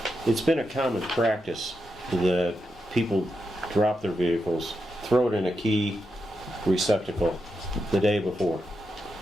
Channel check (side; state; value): both; normal; correlation 0.86